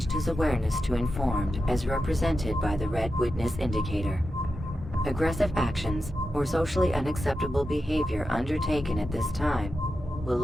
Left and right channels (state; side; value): normal; both; correlation 0.90